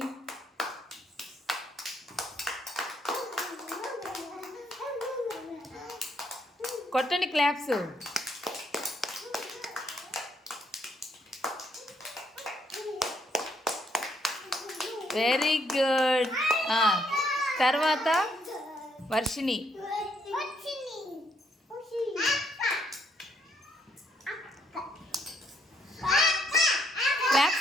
కొట్టండి క్లాప్స్. Very good. తర్వాత వర్షిణి.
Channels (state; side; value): normal; both; correlation 0.72